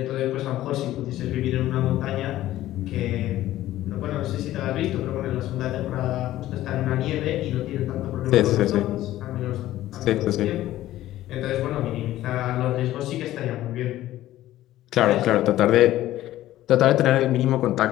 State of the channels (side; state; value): right; quieter; 14.5 dB